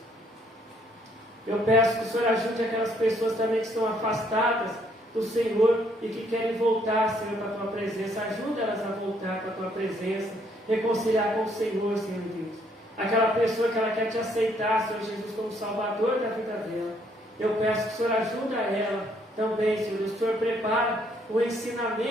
Eu peço que o Senhor ajude aquelas pessoas também que estão afastadas do Senhor e que querem voltar, Senhor, para a tua presença. Ajuda elas a voltar para a tua presença, reconciliar com o Senhor, Senhor Deus. Aquela pessoa que ela quer te aceitar, Senhor Jesus, como Salvador da vida dela. Eu peço que o Senhor ajude ela também, Senhor Deus. O Senhor prepara o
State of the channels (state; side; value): normal; both; correlation 0.68